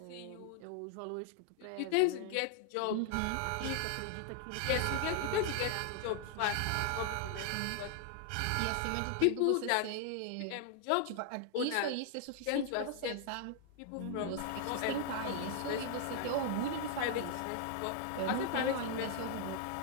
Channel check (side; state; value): both; different; correlation 0.00